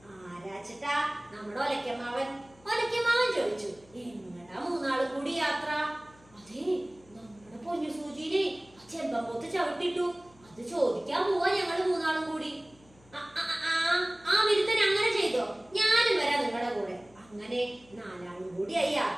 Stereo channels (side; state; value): left; noise; hum, 27 dB below the sound